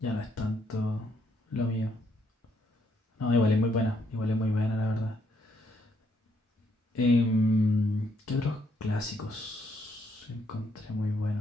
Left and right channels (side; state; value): both; normal; correlation 0.72